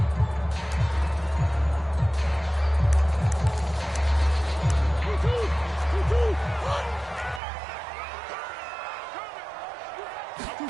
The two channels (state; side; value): drops out; left; at 7.4 s